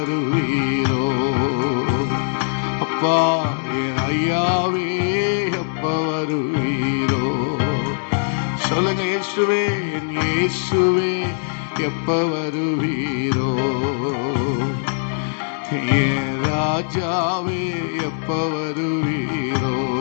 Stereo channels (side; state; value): right; silent; digital silence